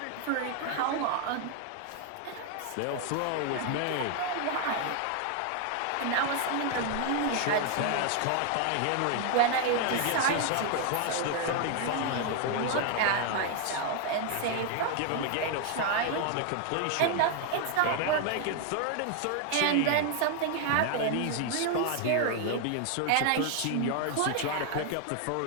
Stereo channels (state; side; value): different; both; correlation 0.00